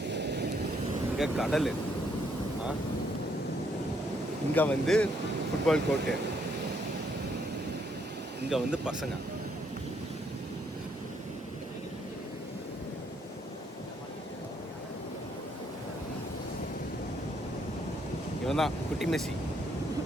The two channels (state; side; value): normal; both; correlation 0.71